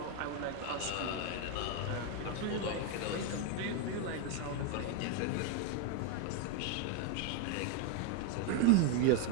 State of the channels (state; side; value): different; both; correlation 0.01